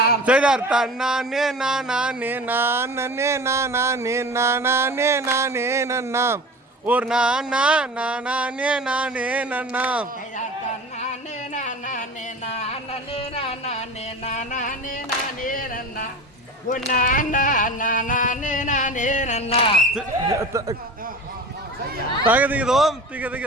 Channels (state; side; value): normal; both; correlation 0.35